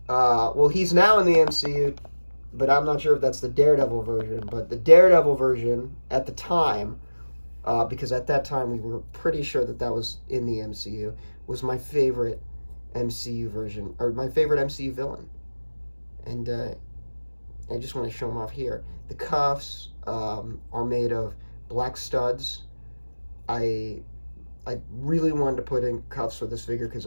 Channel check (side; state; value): both; inverted; correlation -1.00